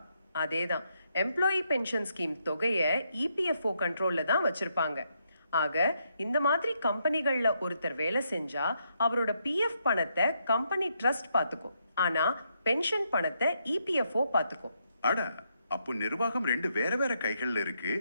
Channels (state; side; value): inverted; both; correlation -0.78